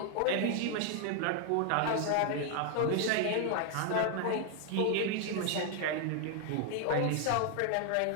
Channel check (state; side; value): different; both; correlation 0.00